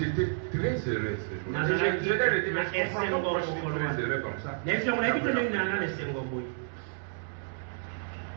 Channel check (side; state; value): left; silent; 58 dB below the other